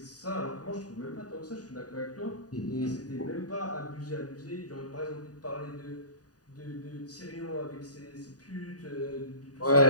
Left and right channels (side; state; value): right; late; 0.68 ms